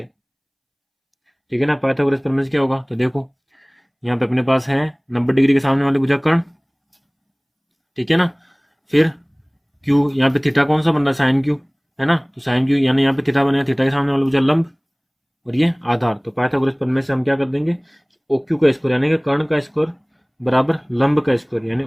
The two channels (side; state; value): both; identical; correlation 1.00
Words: ठीक है ना। पाइथागोरस प्रमेय से क्या होगा, तो देखो यहाँ पे अपने पास है 90 डिग्री के सामने वाले भुजाकर्ण, ठीक है ना। फिर Q, यहाँ पे थीटा कौन सा बन रहा है, साइन Q, है ना, तो साइन Q यानी यहाँ पे थीटा बनेगा, थीटा के सामने वाला भुजा लंब, और ये आधार, तो पाइथागोरस प्रमेय से हम क्या कर देंगे, OQ का स्क्वायर यानी कि कर्ण का स्क्वायर बराबर लंब का स्क्वायर यानी